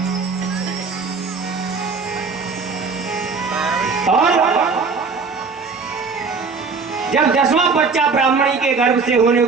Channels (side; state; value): left; quieter; 4.8 dB